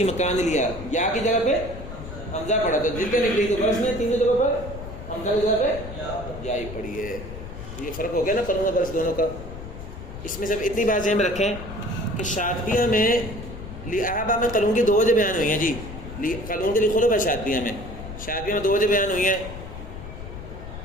مکان لیا، یا کی جگہ پہ حمزہ پڑھا تو جتنے نکلی تو برس میں تینوں جگہوں پر حمزہ کی جگہ پہ یا ہی پڑھی ہے. یہ فرق ہو گیا نا قانون برس دونوں کا. اس میں سب اتنی بات ذہن میں رکھیں کہ شاطبیہ میں لِأَحَبَ میں قانون کی 2 وجہ بیان ہوئی ہیں جی. قانون کے لیے خلف ہے شاطبیہ میں. شاطبیہ میں 2 وجہ بیان ہوئی ہیں.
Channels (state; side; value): noise; left; rumble, 11 dB below the sound